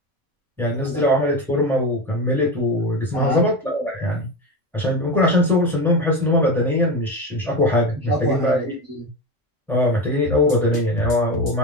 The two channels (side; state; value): both; normal; correlation 0.20